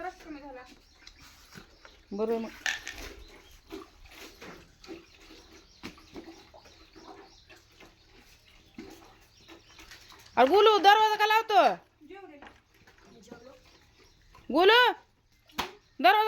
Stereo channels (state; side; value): identical; both; correlation 1.00